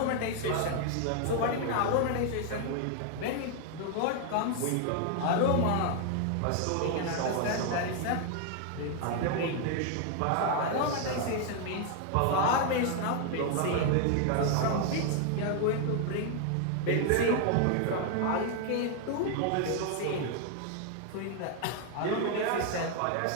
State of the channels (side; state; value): both; different; correlation 0.00